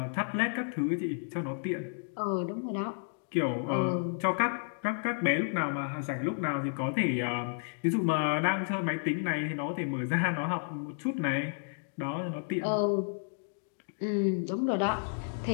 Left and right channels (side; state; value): right; silent; digital silence